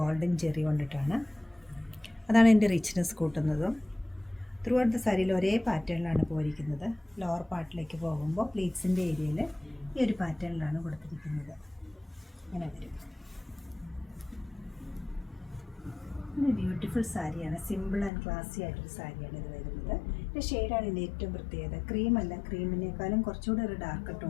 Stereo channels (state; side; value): drops out; right; at 18.1 s